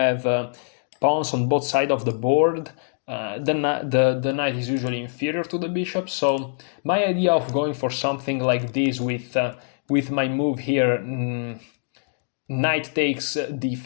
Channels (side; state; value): right; silent; digital silence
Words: pawns on both sides of the board, the knight is usually inferior to the bishop. So my idea of going for something like this with my move here, knight takes